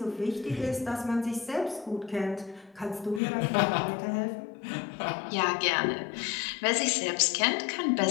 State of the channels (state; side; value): drops out; right; at 3.2 s